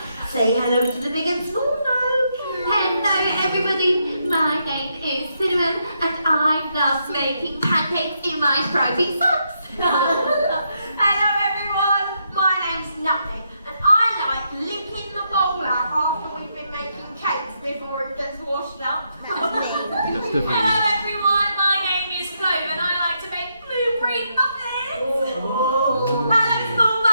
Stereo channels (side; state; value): both; inverted; correlation -0.79